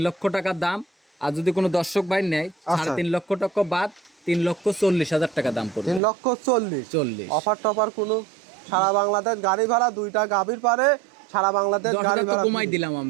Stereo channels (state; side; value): drops out; left; at 6.0 s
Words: লক্ষ টাকা দাম। আর যদি কোনো দর্শক ভাই নেয় 3.5 লক্ষ টাকা বাদ 3,40,000 টাকা দাম পড়বে। 3,40,000। 40। অফার টফার কোনো? সারা বাংলাদেশ গাড়ি ভাড়া, দুইটা গাভীর পারে সারা বাংলাদেশ 10,000 গাড়ি তো ভাড়া কমাই দিলাম